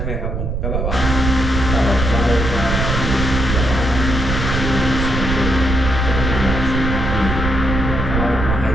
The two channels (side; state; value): right; noise; rumble, 2 dB below the sound